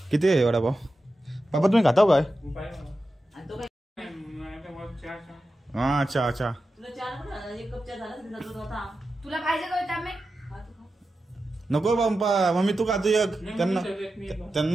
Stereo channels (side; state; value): both; normal; correlation 0.91